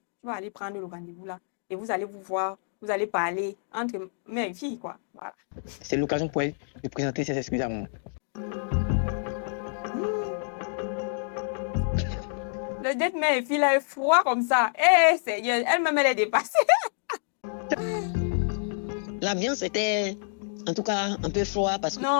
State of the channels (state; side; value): silent; right; digital silence